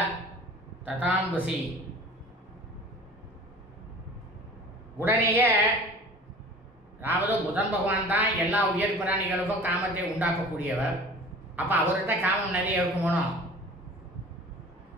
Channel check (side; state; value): both; normal; correlation 0.43